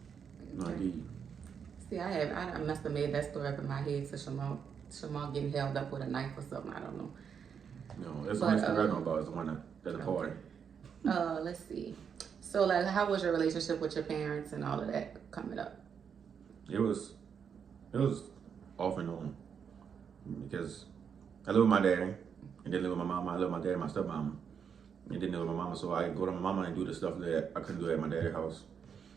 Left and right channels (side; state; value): left; quieter; 7.1 dB